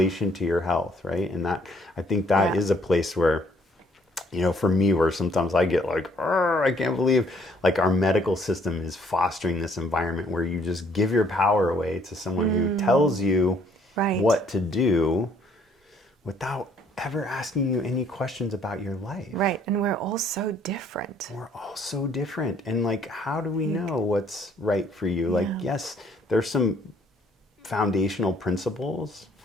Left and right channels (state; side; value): normal; both; correlation 0.64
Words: to your health, right? And that, I think that is a place where, for me, where sometimes I get like, I can't believe like our medical system is fostering this environment where you just give your power away to someone who tells you what to do without ever asking you any questions about your life. Right. And we're all so different. We're all so different. And like, how do we know what's right for you? Like, yes, there's some foundational principles,